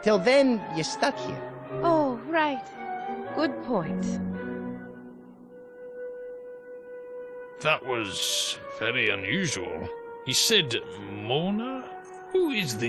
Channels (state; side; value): identical; both; correlation 1.00